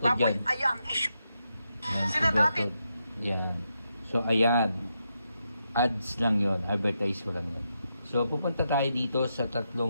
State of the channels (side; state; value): both; inverted; correlation -0.84